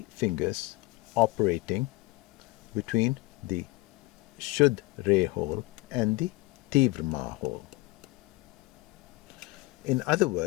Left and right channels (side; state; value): right; quieter; 22.0 dB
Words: fingers operating between the Shuddh Re hole and the Tivrama hole. In other